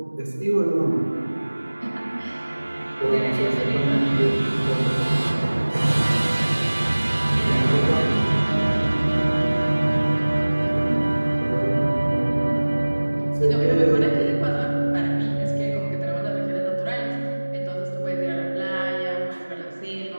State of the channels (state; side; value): inverted; both; correlation -1.00